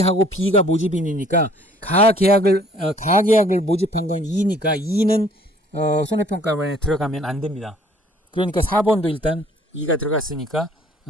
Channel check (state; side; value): normal; both; correlation 0.57